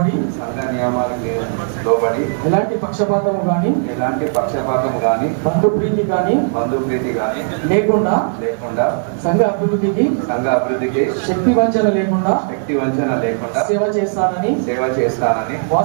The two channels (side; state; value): left; silent; digital silence